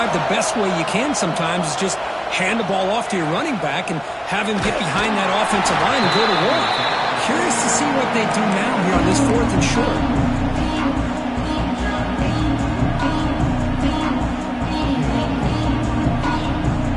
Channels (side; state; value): both; identical; correlation 1.00